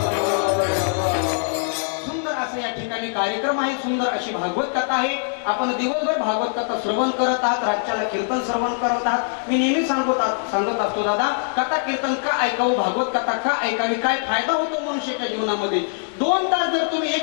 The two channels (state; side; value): silent; right; digital silence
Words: सुंदर असं या ठिकाणी कार्यक्रम आहे. सुंदर अशी भागवत कथा आहे. आपण दिवसभर भागवत कथा श्रवण करत आहात, रातच्याला कीर्तन श्रवण करत आहात. मी नेहमी सांगत असतो दादा, कथा कीर्तन का ऐकावं, भागवत कथा का ऐकावी, काय फायदा होतो मनुष्याच्या जीवनामध्ये. 2 तास जर तुम्ही